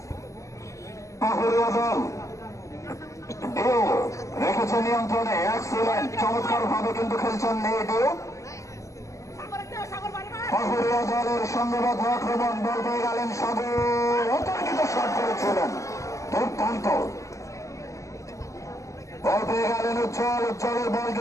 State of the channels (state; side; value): late; right; 0.15 ms